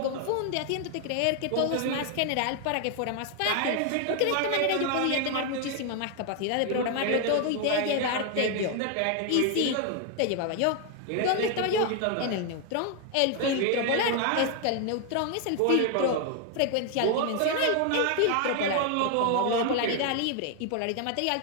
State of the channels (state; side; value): different; both; correlation 0.00